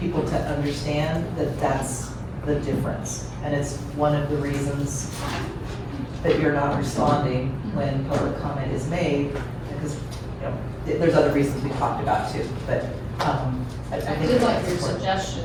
people to understand that that's the difference. And it's one of the reasons that you're not responding when public comment is made, because, you know, there's other reasons we talked about too, but, I I think did like that's your important. suggestion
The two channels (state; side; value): identical; both; correlation 1.00